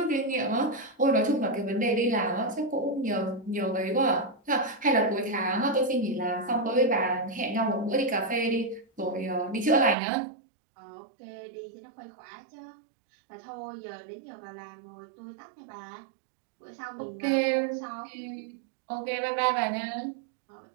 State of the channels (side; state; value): left; drops out; at 10.0 s